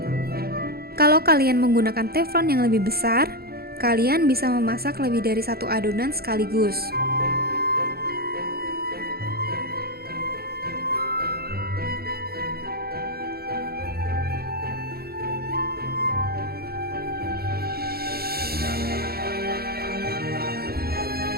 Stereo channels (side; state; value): left; late; 0.45 ms